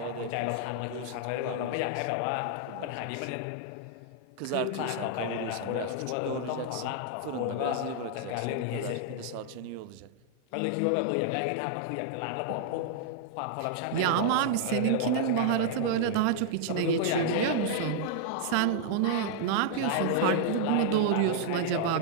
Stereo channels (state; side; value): different; both; correlation -0.01